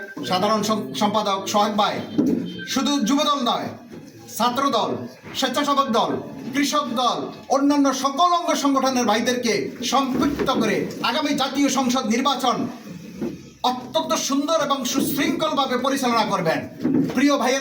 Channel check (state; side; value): identical; both; correlation 1.00